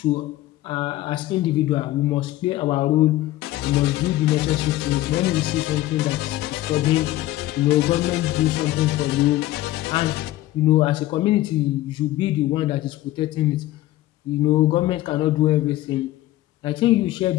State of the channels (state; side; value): quieter; right; 15.8 dB